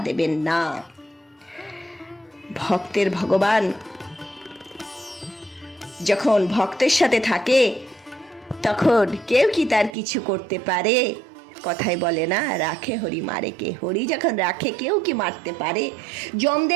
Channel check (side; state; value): left; drops out; at 10.0 s